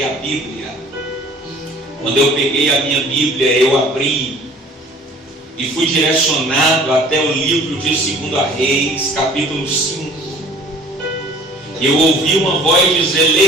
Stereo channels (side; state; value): both; normal; correlation 0.50